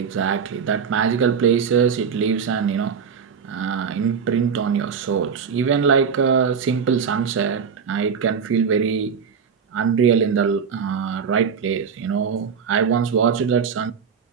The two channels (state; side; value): quieter; left; 6.5 dB